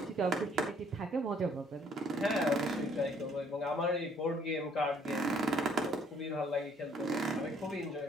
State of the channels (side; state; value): both; normal; correlation 0.63